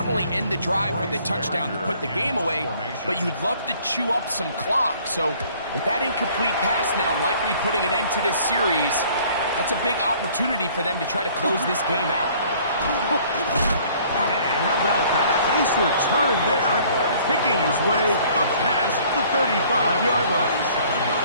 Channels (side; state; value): both; inverted; correlation -0.56